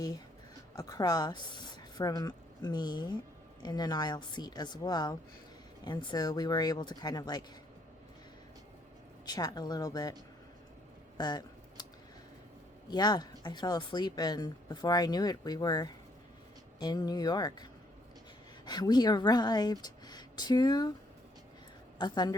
across from me in an aisle seat as well. And so we were able to kind of like chat a little bit. But yeah, I fell asleep, and before I knew it, we were in New York. We arrived to a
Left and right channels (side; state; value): both; normal; correlation 0.68